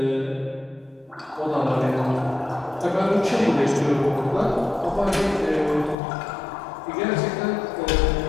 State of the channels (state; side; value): drops out; right; at 6.0 s